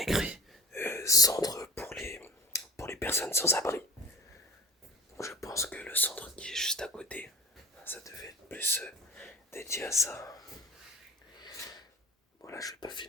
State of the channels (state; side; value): normal; both; correlation 0.38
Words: centre pour les personnes sans abri. Donc je pense que le centre qui est juste à côté, ça devait être plus dédié à ça. Bon là je vais pas